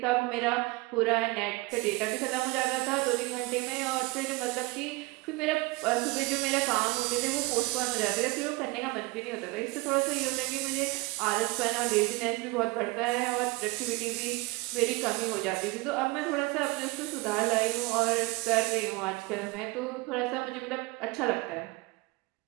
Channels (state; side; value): quieter; left; 23.8 dB